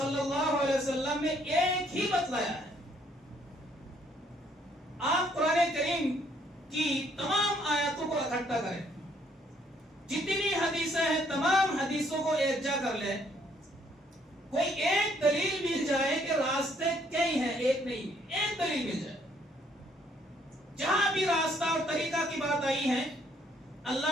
اللہ علیہ وسلم نے ایک ہی بتلایا ہے. آپ قرآن کریم کی تمام آیاتوں کو اکٹھا کریں، جتنی حدیثیں ہیں تمام حدیثوں کو ایک جا کر لیں، کوئی ایک دلیل مل جائے کہ راستے کئی ہیں، ایک نہیں، ایک دلیل مل جائے. جہاں بھی راستہ اور طریقہ کی بات آئی ہے،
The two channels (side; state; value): both; normal; correlation 0.67